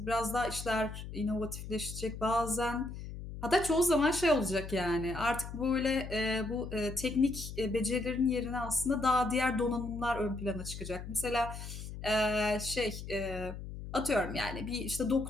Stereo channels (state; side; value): noise; left; hum, 9 dB below the sound